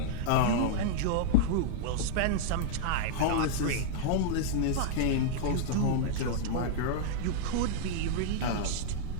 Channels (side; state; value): both; different; correlation -0.01